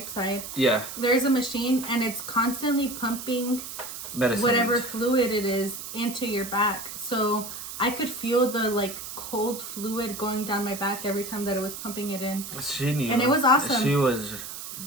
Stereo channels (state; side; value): noise; right; hiss, 9 dB below the sound